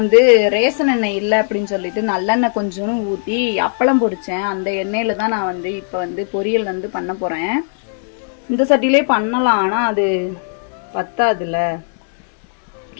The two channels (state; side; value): silent; right; digital silence